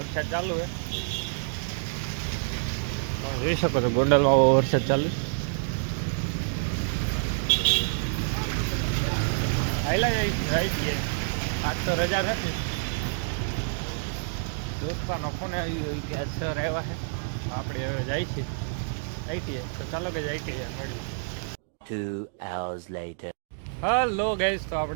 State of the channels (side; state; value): left; silent; digital silence